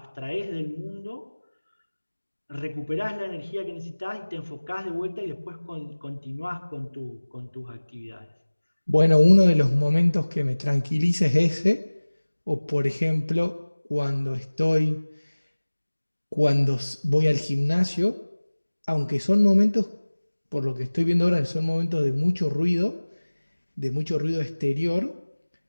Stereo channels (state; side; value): inverted; both; correlation -1.00